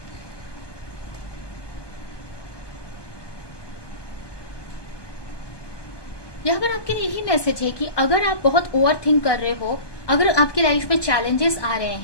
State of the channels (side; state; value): right; late; 1.2 ms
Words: मैसेज है कि अगर आप बहुत ओवर थिंक कर रहे हो, अगर आपकी लाइफ में चैलेंजेस आ रहे